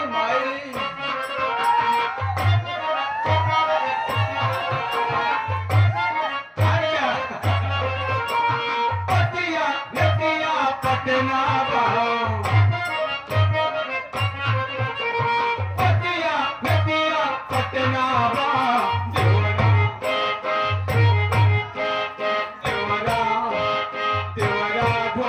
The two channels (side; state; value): both; identical; correlation 1.00